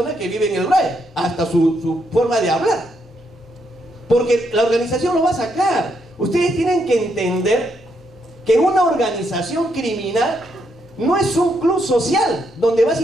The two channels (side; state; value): both; normal; correlation 0.77